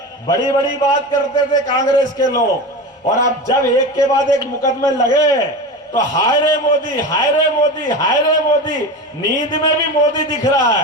बड़ी बड़ी बात करते थे कांग्रेस के लोग और अब जब एक के बाद एक मुकदमे लगे तो हाय रे मोदी, हाय रे मोदी, हाय रे मोदी। नींद में भी मोदी दिख रहा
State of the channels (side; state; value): both; normal; correlation 0.26